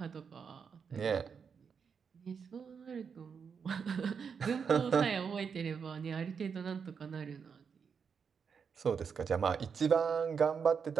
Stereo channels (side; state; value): left; quieter; 6.3 dB